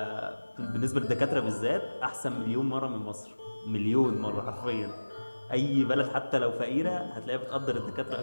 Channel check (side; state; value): both; inverted; correlation -1.00